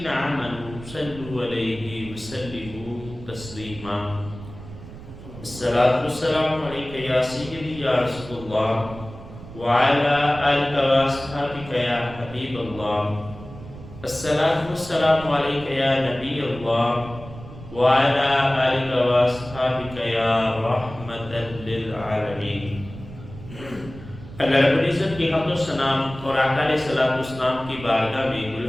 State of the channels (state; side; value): noise; right; rumble, 15 dB below the sound